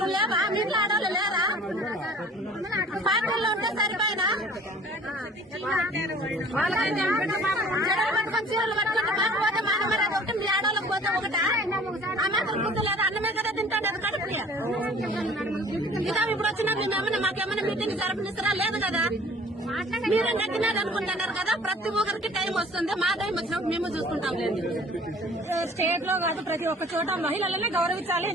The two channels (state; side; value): normal; both; correlation 0.50